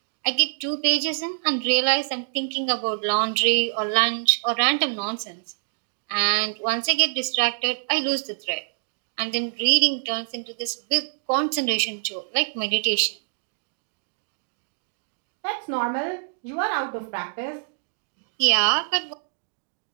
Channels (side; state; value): left; silent; digital silence